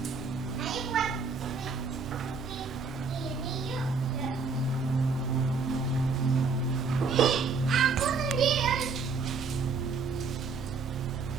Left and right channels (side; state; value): left; quieter; 4.7 dB